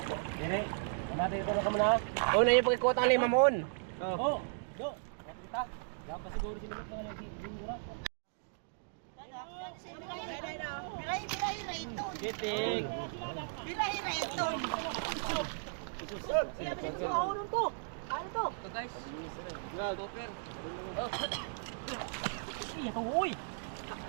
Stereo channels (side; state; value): left; silent; digital silence